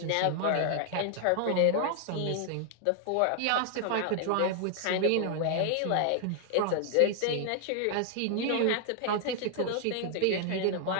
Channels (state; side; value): different; both; correlation 0.00